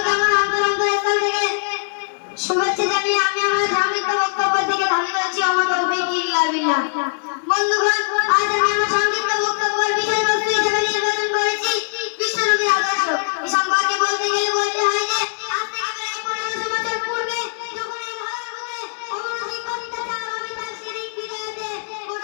আমার অন্তরস্থল থেকে শুভেচ্ছা জানিয়ে আমি আমার সংক্ষিপ্ত বক্তব্য থেকে ধারণ করছি আমার তৌফিক ইল্লা বিল্লাহ। বন্ধুগণ, আজ আমি আমার সংক্ষিপ্ত বক্তব্যের বিষয়বস্তু হিসেবে নির্বাচন করেছি বিশ্বনবীর আদর্শ। এই সম্পর্কে বলতে গেলে বলতে হয় যে আজ থেকে প্রায় 1500 বছর পূর্বে যখন এই ধরার বুকে অমানবিক অত্যাচার, অবিচার, শিরক, বিদআতে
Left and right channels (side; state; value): right; silent; digital silence